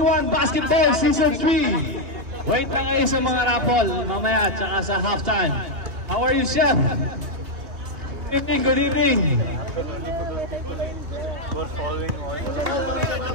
Basketball Season 3. Wait lang kayo sa mga raffle mamaya tsaka sa halftime. How are you, Chef? Good evening, good evening.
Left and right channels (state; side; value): late; left; 2.6 ms